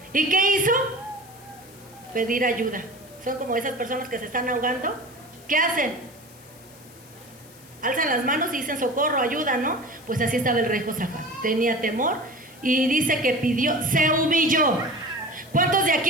¿Y qué hizo? Pedir ayuda. Son como esas personas que se están ahogando. ¿Qué hacen? Alzan las manos y dicen socorro, ayuda, ¿no? Pues así estaba el rey Josafat. Tenía temor y dice que pidió, se humilló. ¿Cuántos de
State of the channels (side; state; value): left; noise; hiss, 23 dB below the sound